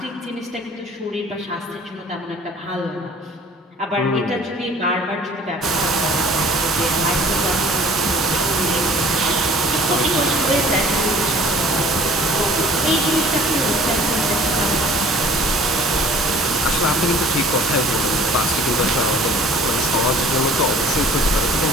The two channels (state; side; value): normal; both; correlation 0.51